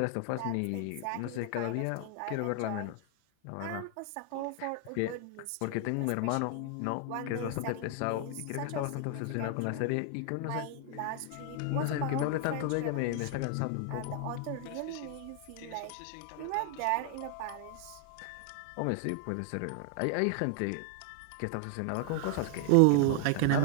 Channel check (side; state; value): both; different; correlation 0.00